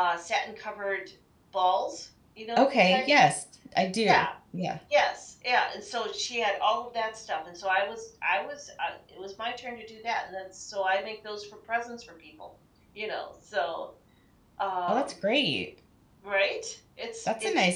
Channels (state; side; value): identical; both; correlation 1.00